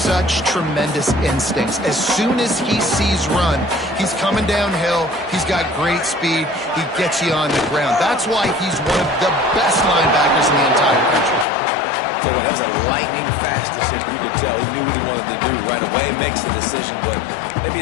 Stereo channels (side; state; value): right; drops out; at 11.5 s